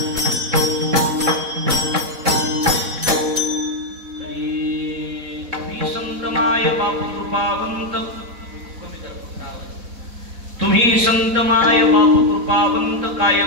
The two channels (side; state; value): left; late; 4.1 ms